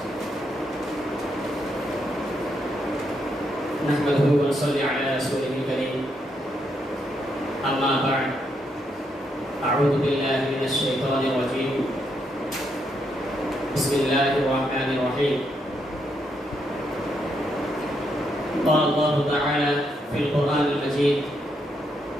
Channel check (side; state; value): both; normal; correlation 0.78